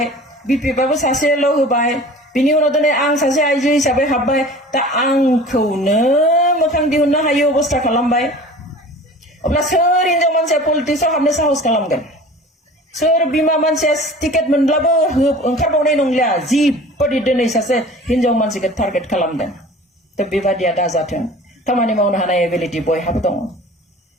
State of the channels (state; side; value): normal; both; correlation 0.42